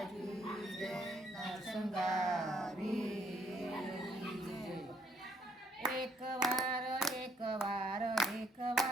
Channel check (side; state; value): both; normal; correlation 0.68